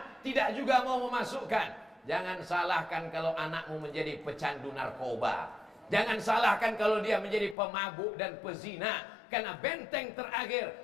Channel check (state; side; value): drops out; right; at 7.6 s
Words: tidak juga mau memasukkan. Jangan salahkan kalau anakmu menjadi pecandu narkoba. Jangan salahkan kalau dia menjadi pemabuk dan pezina. Karena benteng